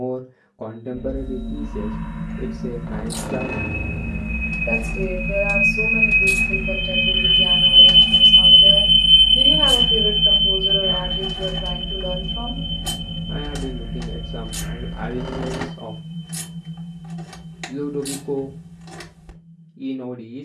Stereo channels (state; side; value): identical; both; correlation 1.00